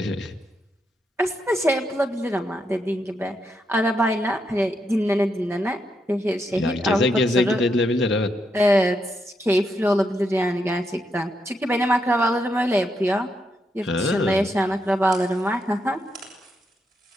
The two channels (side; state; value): both; normal; correlation 0.81